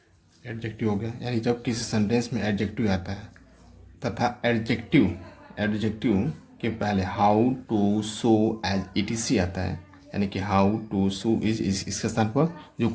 गया, यानी जब किसी सेंटेंस में एडजेक्टिव आता है तथा एडजेक्टिव के पहले how too so as E T C आता है, यानी कि हाउ टू सो इज इसके स्थान पर जो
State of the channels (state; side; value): identical; both; correlation 1.00